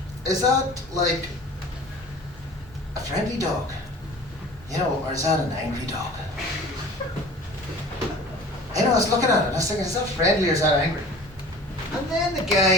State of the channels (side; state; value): both; normal; correlation 0.42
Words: like a friendly dog? Or is that an angry dog? I was looking at it and I was thinking, is that friendly or is that angry? And then the